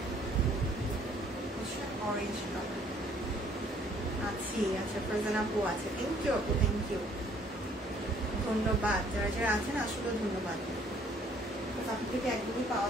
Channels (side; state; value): both; normal; correlation 0.60